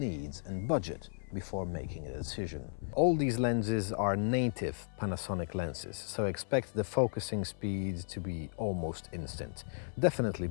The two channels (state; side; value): silent; right; 55 dB below the other